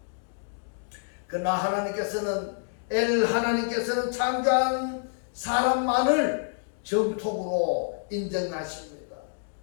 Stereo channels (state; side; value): silent; right; digital silence